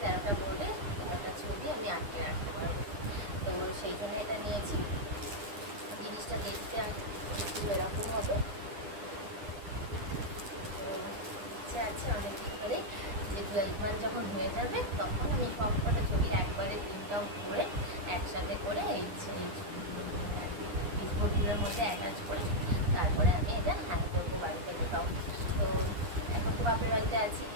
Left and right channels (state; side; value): late; left; 9.9 ms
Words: 13টা বোর্ডে 13টা ছবি আমি আটকে রাখতে পারবো। তো সেই জন্য এটা নিয়েছি। জিনিসটা দেখতে একটু এরকম হবে। তো ইচ্ছা আছে অনেকদিন ধরে যে 12 মান্থ যখন হয়ে যাবে তখন আমি সব কটা ছবি একবারে প্রিন্ট আউট করে একসাথে করে এই পিসবোর্ডগুলোর মধ্যে অ্যাটাচ করে তারপরে আমি এটা হ্যাং করবো বাড়িতে কোথাও। তো এখন তো বাপের বাড়িতে আছি,